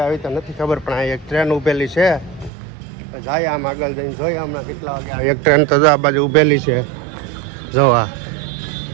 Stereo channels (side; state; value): left; drops out; at 2.5 s